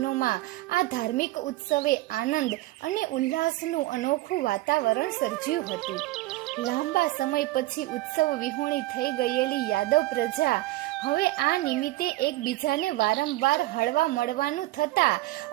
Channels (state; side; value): quieter; left; 18.2 dB